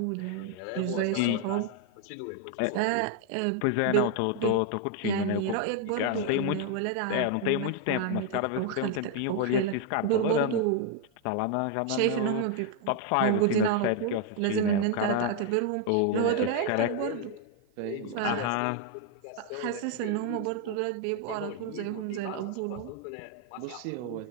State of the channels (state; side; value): different; both; correlation 0.00